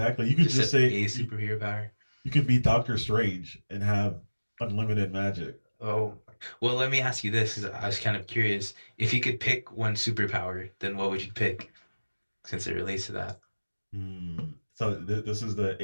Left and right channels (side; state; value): both; inverted; correlation -1.00